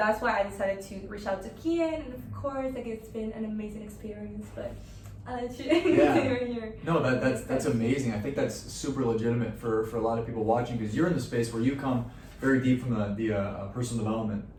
why I decided to reach out to Keyen, and of course it's been an amazing experience, but I'll let you here. No, that's amazing. I think that's super legitimate for a lot of people watching, because you're in the space where you come very deep from the personal development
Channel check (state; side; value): identical; both; correlation 1.00